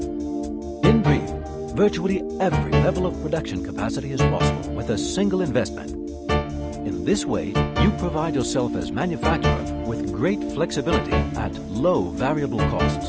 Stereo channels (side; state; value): both; identical; correlation 1.00